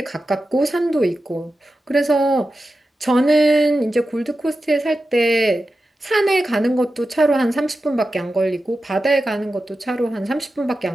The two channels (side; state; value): both; normal; correlation 0.92